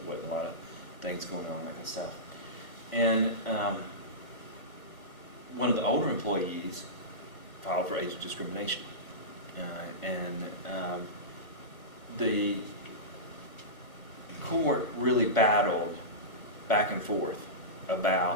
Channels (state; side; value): late; right; 1.2 ms